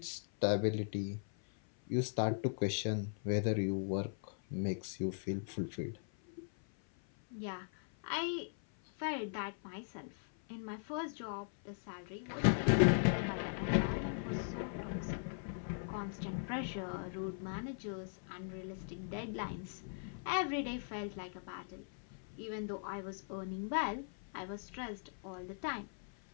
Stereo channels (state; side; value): silent; right; 51 dB below the other